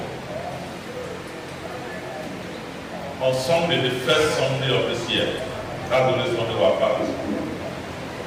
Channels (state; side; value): identical; both; correlation 1.00